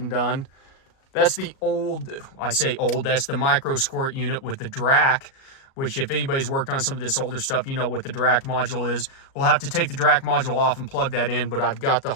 done. That's the old, I say old, that's the micro squirt unit with the DRAC, which if anybody's worked on some of this older stuff, you know what the DRAC module is. We'll have to take the DRAC module off and plug that in, but I've got the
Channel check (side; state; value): right; late; 37 ms